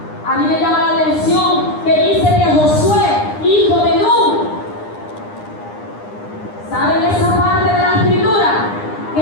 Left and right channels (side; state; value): right; late; 9.8 ms